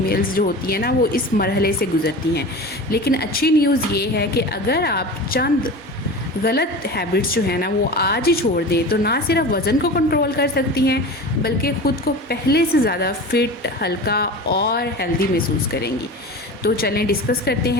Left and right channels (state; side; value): normal; both; correlation 0.32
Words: जो होती हैं ना वो इस मरहले से गुज़रती हैं। लेकिन अच्छी न्यूज़ ये है कि अगर आप चंद गलत हैबिट्स जो है ना वो आज ही छोड़ दें तो ना सिर्फ वज़न को कंट्रोल कर सकती हैं बल्कि ख़ुद को पहले से ज़्यादा फिट, हल्का और हेल्दी महसूस करेंगी। तो चलें डिस्कस करते